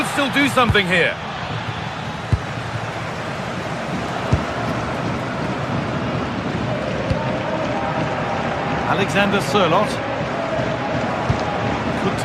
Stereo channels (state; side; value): identical; both; correlation 1.00